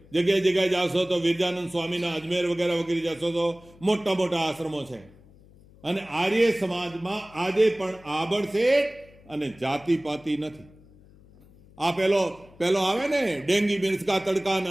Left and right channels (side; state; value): left; noise; hum, 25 dB below the sound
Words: જગ્યાએ જાશો તો વિરજાનંદ સ્વામીના અજમેર વગેરે જશો તો મોટા મોટા આશ્રમો છે. અને આર્ય સમાજમાં આજે પણ આબડશેઠ અને જાતિપાતિ નથી. આ પેલો આવે ને ડેંગી મિર્ચકા તડકા ને